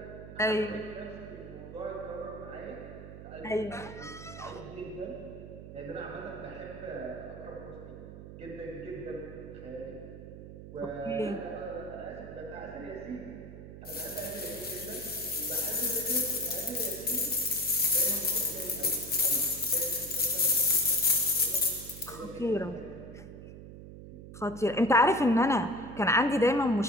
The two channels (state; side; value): noise; right; hum, 13 dB below the sound